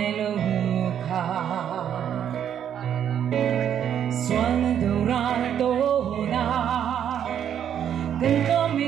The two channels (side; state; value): left; quieter; 9.3 dB